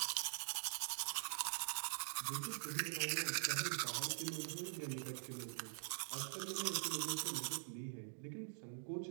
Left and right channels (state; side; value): silent; left; digital silence